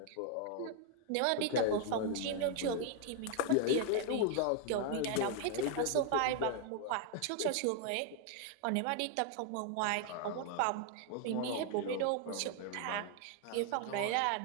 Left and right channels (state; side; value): different; both; correlation 0.00